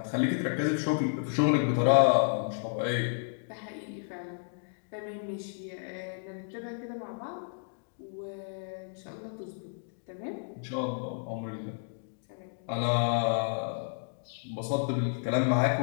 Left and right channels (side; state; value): right; silent; digital silence